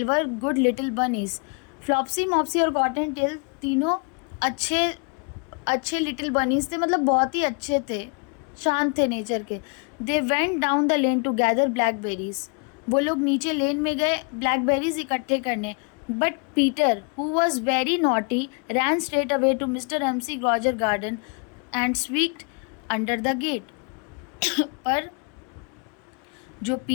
were good little bunnies. Flopsy, Mopsy और कॉटन टेल तीनों अच्छे लिटिल बनीज थे, मतलब बहुत ही अच्छे थे, शांत थे नेचर के। They went down the lane to gather blackberries. वो लोग नीचे लेन में गए ब्लैकबेरीज इकट्ठे करने। But Peter, who was very naughty, ran straight away to mister McGregor garden and squeezed under the gate. पर जो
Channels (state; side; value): quieter; right; 37.0 dB